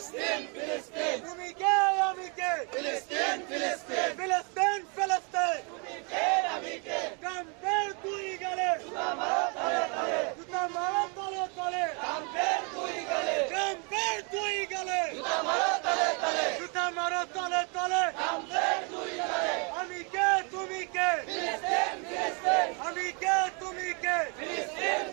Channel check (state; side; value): quieter; left; 34.5 dB